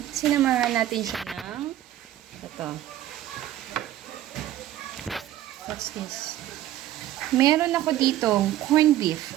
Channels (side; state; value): left; quieter; 13.1 dB